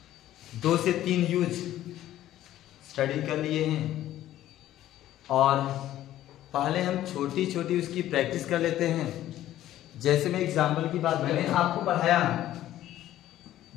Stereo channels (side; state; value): right; quieter; 13.3 dB